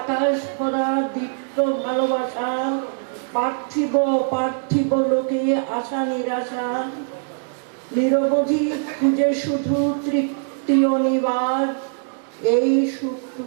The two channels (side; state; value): left; silent; digital silence